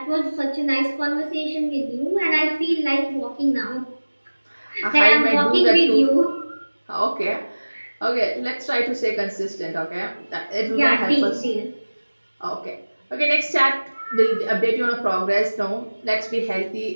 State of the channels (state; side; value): inverted; both; correlation -1.00